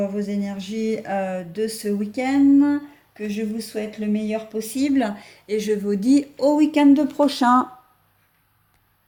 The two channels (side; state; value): both; identical; correlation 1.00